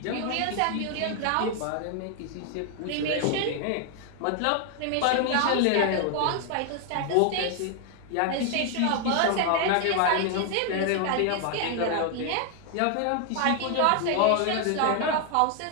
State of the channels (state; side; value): different; both; correlation 0.00